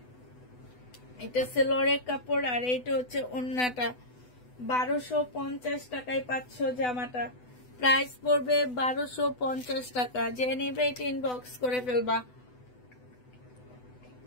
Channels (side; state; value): right; late; 8.0 ms